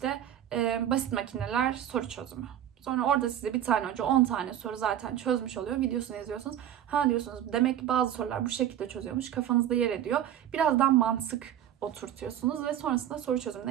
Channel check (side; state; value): left; quieter; 10.9 dB